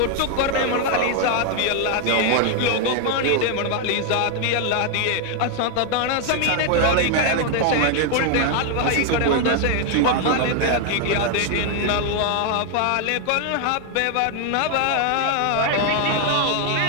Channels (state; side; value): different; both; correlation 0.00